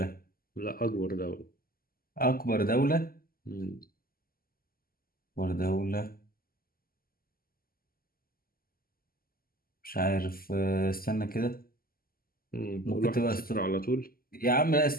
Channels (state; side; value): late; right; 0.42 ms